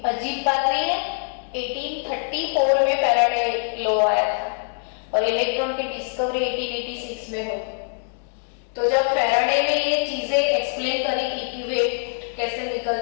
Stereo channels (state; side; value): silent; right; 63 dB below the other